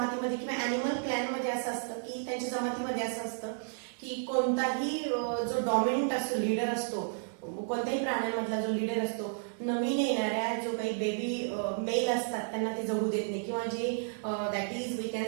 किंवा एनिमल क्लॅन मध्ये असं असतं की त्यांच्या जमातीमध्ये असं असतं की कोणताही जो डॉमिनंट असतो, लीडर असतो, कोणत्याही प्राण्यांमधला जो लीडर असतो, नवीन येणाऱ्या जो काही बेबी मेल असतात त्यांना ते जगू देत नाही, किंवा जे that is we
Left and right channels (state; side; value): silent; left; digital silence